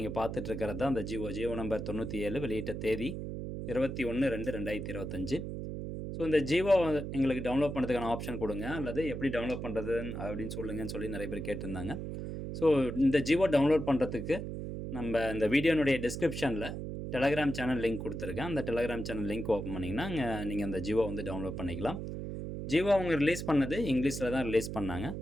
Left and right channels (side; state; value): right; noise; hum, 6 dB below the sound